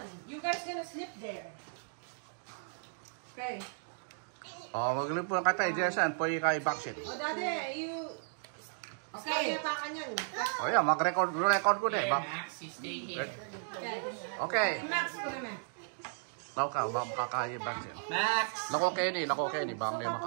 You guys gonna sleep there. Okay. Oh, maglip po ka tayo, Jason. Pwede kayo backseat. O, Daddy, you... Okay. Kaya pa kanyan. Oh, yeah, mag-record ko na eh. Max, you stay here. Okay. Max ko naman. Tao ka, makakaya backseat. Max! Nako, Kenny. Baka may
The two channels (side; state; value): left; silent; digital silence